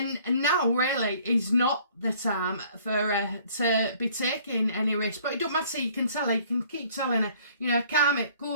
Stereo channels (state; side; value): inverted; both; correlation -0.57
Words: now really is not the time for her to be taking any risk. But it don't matter, you can tell her, you can keep telling her, you know, calm it,